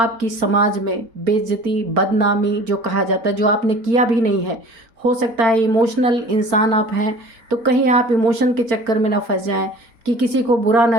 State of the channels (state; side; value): late; left; 4.4 ms